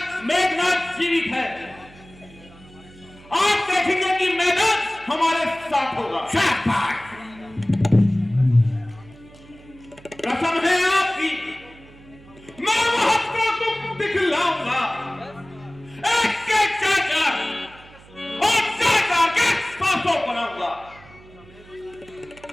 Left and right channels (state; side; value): noise; right; hum, 23 dB below the sound